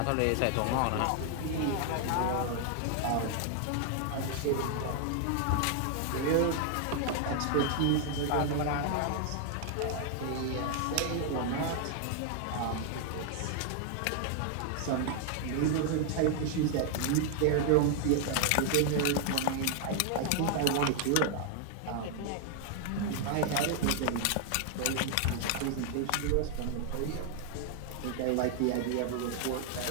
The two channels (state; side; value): different; both; correlation 0.00